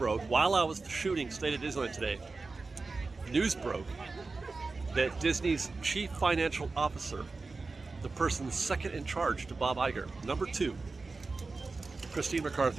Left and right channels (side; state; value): left; quieter; 3.9 dB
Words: while I was shooting State of Disneyland today. News broke that Disney's chief financial officer, the person second in charge to Bob Iger, number 2, Christine